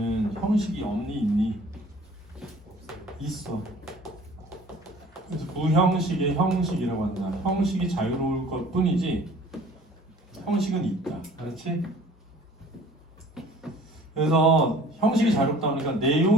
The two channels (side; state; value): both; normal; correlation 0.50